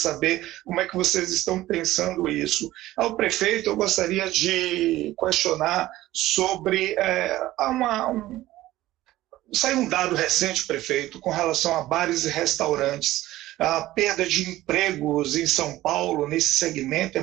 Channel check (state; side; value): quieter; left; 15.9 dB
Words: como é que vocês estão pensando isso. Ao prefeito, eu gostaria de questionar sobre saiu um dado recente, prefeito, com relação a bares e restaurantes. A perda de empregos em São Paulo, nesse segmento, é